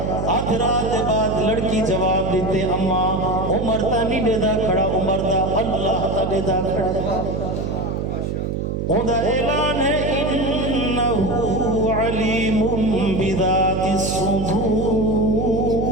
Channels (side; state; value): right; noise; hum, 2 dB below the sound